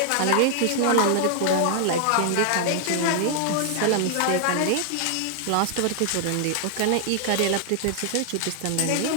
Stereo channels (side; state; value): both; different; correlation 0.00